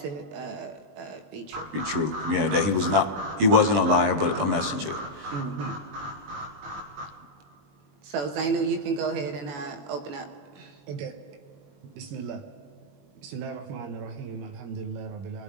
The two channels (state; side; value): late; left; 21 ms